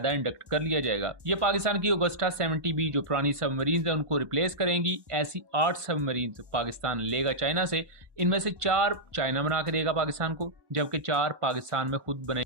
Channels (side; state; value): left; late; 1.1 ms